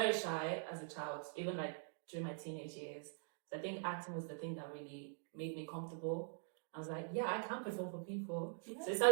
shy as a child, even like during my teenage years. So I think acting was the thing that really made me comfortable. I was like, yeah, I can perform for people. So I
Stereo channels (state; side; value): silent; left; digital silence